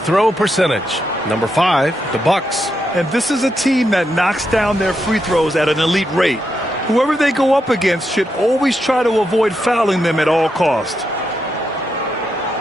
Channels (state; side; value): normal; both; correlation 0.83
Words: percentage. Number 5, the Bucks. And this is a team that knocks down their free throws at an elite rate. Whoever they go up against should always try to avoid fouling them at all costs.